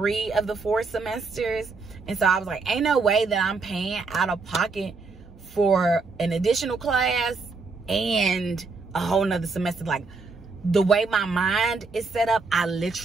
of the 4 semesters. And so I was like, ain't no way that I'm paying out of pocket for an additional class and a whole nother semester. Like, the way my mind is set up, I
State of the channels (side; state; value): left; quieter; 4.1 dB